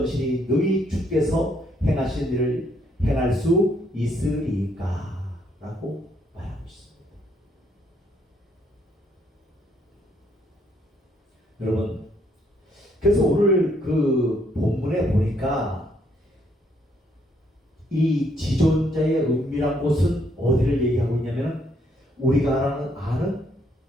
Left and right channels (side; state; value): both; normal; correlation 0.70